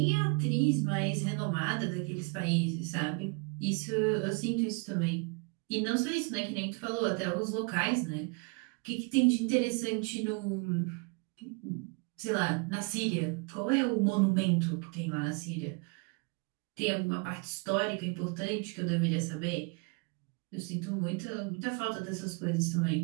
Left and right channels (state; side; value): quieter; left; 32.2 dB